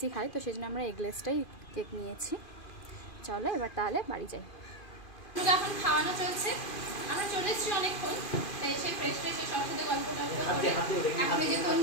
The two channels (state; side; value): late; right; 2.5 ms